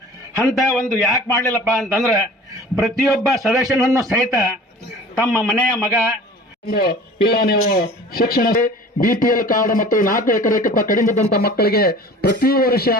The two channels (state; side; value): normal; both; correlation 0.43